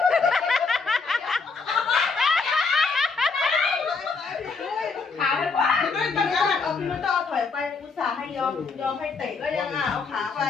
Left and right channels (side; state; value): right; quieter; 4.6 dB